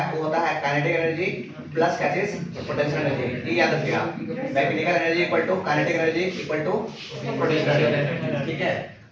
वो होता है काइनेटिक एनर्जी प्लस क्या चीज, पोटेंशियल एनर्जी। ये याद रखिएगा, mechanical energy equal to kinetic energy equal to potential energy, ठीक है।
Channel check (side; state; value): both; identical; correlation 1.00